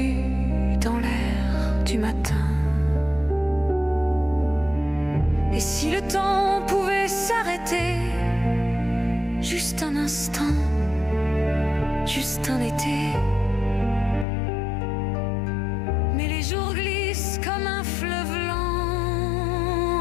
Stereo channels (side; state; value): right; drops out; at 14.2 s